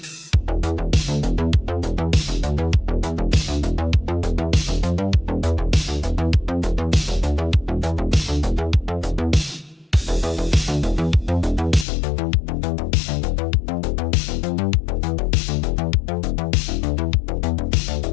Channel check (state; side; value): drops out; right; at 11.9 s